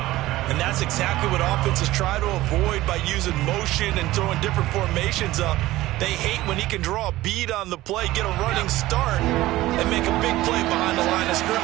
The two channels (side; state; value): left; quieter; 16.9 dB